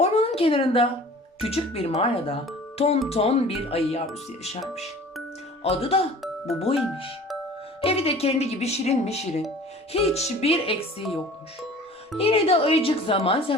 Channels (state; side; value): normal; both; correlation 0.45